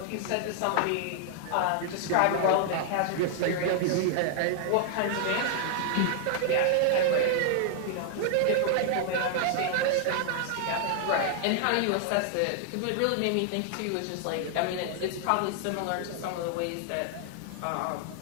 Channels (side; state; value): both; different; correlation 0.00